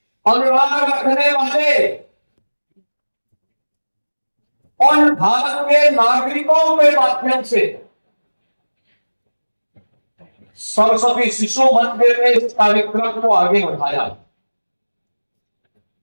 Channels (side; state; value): both; inverted; correlation -1.00